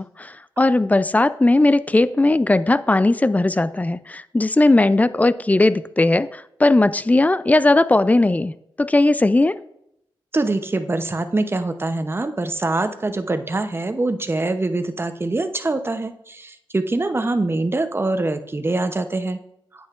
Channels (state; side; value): normal; both; correlation 0.92